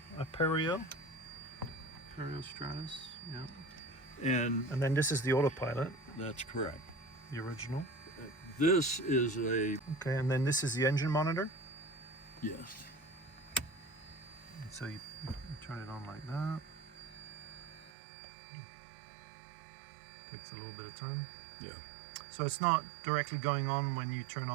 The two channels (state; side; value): drops out; left; at 17.9 s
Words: Stratus, yeah. and And then this is the autopilot, that's correct. the original. This is a Okay, and then this is the engine monitor. yes. And so you turn it on like that. Takes a little bit of time. Yeah, So it's not directly going on when you turn